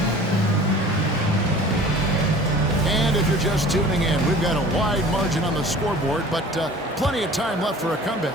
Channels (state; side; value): normal; both; correlation 0.45